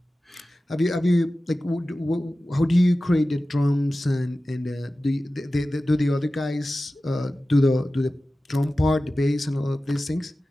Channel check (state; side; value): normal; both; correlation 0.95